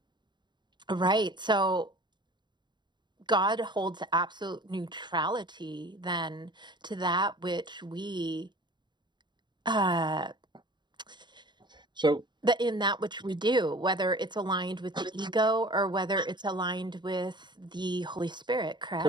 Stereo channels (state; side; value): late; left; 0.22 ms